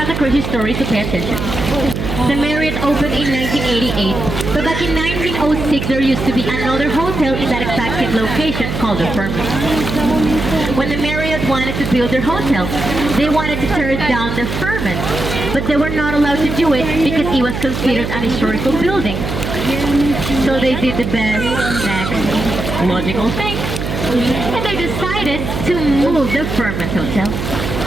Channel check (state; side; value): noise; right; hum, 4 dB below the sound